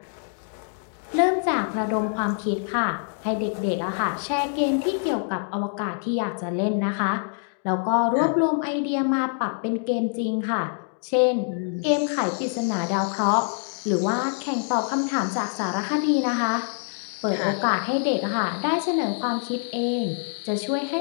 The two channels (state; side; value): silent; right; 62 dB below the other